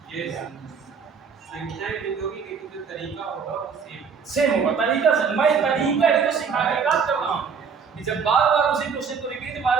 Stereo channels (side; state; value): left; quieter; 6.1 dB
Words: ये संख्याएं लिखोगी लेकिन जो तरीका होगा वो सेम होगा तरीका से। मैं तरीका ही तो सिखाने का काम कर रहा हूँ कि जब बार बार उसी क्वेश्चन को रिपीट